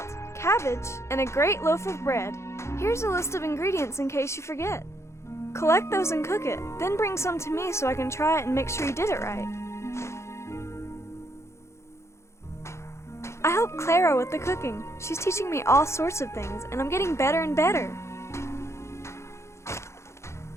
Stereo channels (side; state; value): right; late; 0.13 ms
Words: cabbage, and a great loaf of bread. Here's a list of ingredients in case you forget. Collect those and cook it, then bring some to me so I can try it and make sure you did it right. I help Clara with the cooking. She's teaching me all sorts of things, and I'm getting better and better.